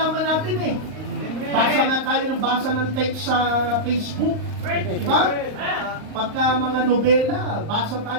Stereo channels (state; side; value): late; left; 39 ms